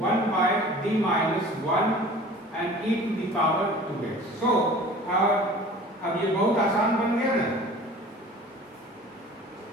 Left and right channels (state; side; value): normal; both; correlation 0.44